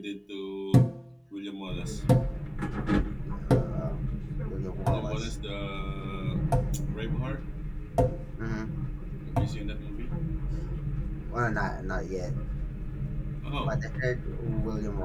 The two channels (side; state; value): both; identical; correlation 1.00